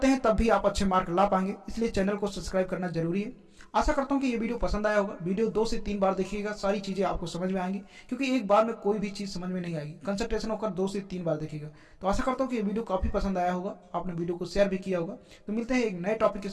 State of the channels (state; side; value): identical; both; correlation 1.00